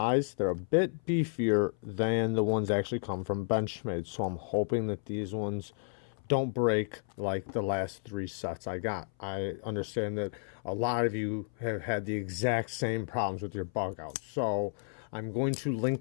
they're a bit beefier than the ones that actually come from Benchmade. So I'm hoping that these ones don't break like the last 3 sets I got. I understand that a lot of you have had the exact same problems with your bug out. So I'm going to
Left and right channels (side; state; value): right; silent; 56 dB below the other